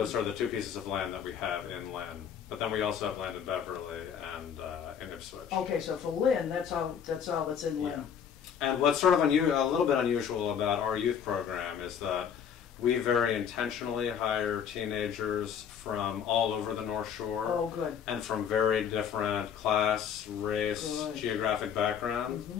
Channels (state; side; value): quieter; right; 8.0 dB